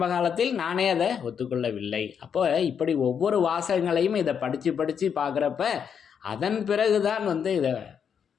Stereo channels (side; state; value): right; quieter; 7.4 dB